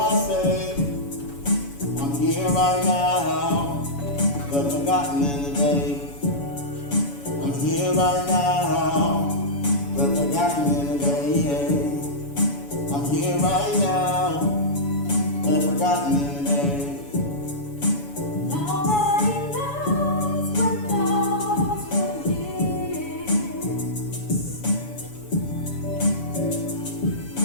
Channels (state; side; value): late; right; 7.1 ms